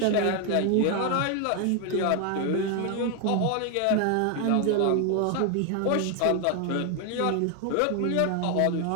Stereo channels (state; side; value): different; both; correlation 0.01